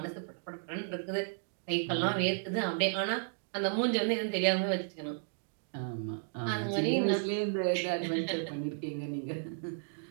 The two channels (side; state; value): left; silent; digital silence